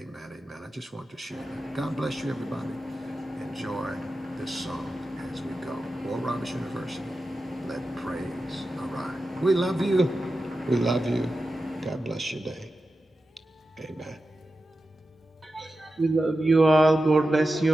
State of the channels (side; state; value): both; normal; correlation 0.92